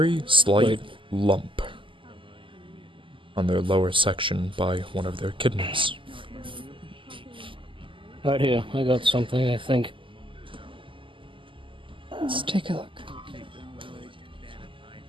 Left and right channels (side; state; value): left; late; 0.25 ms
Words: slight lump on their lower section by one of their kidneys. Right here, I got something, I think. Let's take a look.